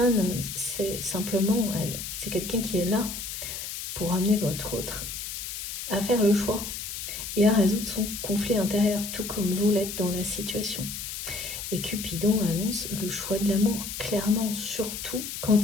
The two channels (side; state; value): left; noise; hiss, 7 dB below the sound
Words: c'est simplement, c'est quelqu'un qui est là pour amener votre autre à faire le choix et à résoudre son conflit intérieur, tout comme vous l'êtes dans la situation. Et Cupidon annonce le choix de l'amour, clairement, surtout quand